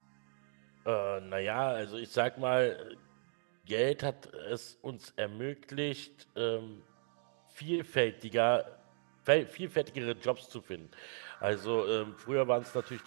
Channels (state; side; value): silent; left; digital silence